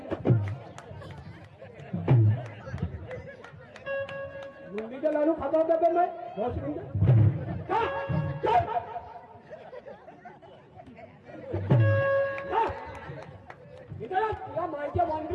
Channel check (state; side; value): identical; both; correlation 1.00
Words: बुंदीच्या लाडू खाता होता का नाही बस मिनिट का? का? का? इधर आ, तुला मायच्या